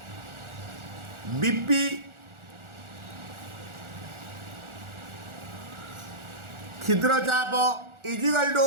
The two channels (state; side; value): late; left; 1.4 ms